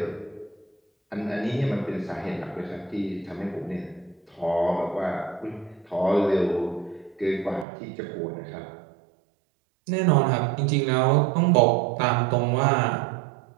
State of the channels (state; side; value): drops out; left; at 7.7 s